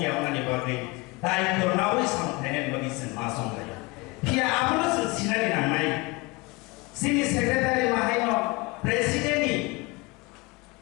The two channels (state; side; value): quieter; right; 25.1 dB